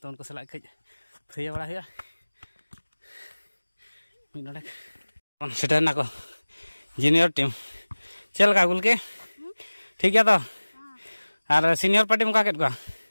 to unko salak kej thaya bada huya min nodek on setar na ko junior team चल का गुल के ठीक है तो और सीनियर पार्टी मुका केट को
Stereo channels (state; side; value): inverted; both; correlation -1.00